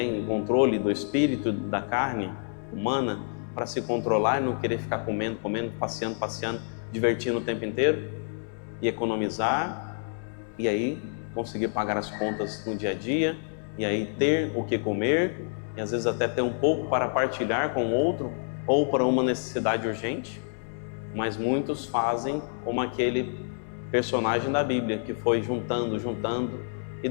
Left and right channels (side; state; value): right; silent; digital silence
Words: o controle do espírito, da carne humana, para se controlar e não querer ficar comendo, passeando, divertindo o tempo inteiro e economizar, e aí conseguir pagar as contas no dia a dia, e aí ter o que comer, e às vezes até ter um pouco para partilhar com o outro, ou para uma necessidade urgente. Mas muitos fazem como aquele personagem da Bíblia, que foi juntando, e